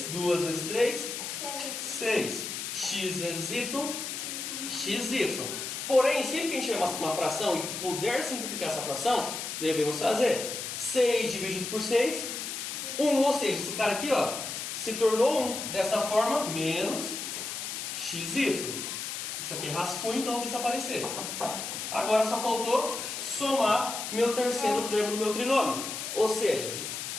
2 vezes 3, 6. X vezes y, xy. Porém, sempre que a gente tiver uma fração e puder simplificar essa fração, devemos fazer 6 dividido por 6, 1. Ou seja, esse cara aqui, ó, se tornou 1. Dessa forma, menos xy. Isso aqui é rascunho, então não precisa aparecer. Agora só faltou somar meu terceiro termo do meu trinômio. Ou seja,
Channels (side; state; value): left; noise; hiss, 5 dB below the sound